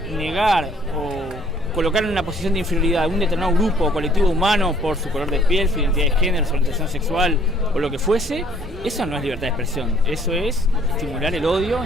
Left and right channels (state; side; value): normal; both; correlation 0.59